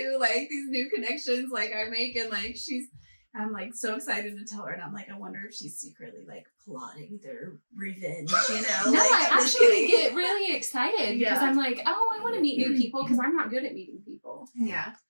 like these new connections like I make and like I'm like so excited to tell her and I'm like, I wonder if she's secretly like plotting their revenge, you know? No, like, I I'm just actually kidding. get really excited because Yeah. I'm like, oh, I want to meet new people because I'm not good at meeting people. Yeah.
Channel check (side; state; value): both; inverted; correlation -1.00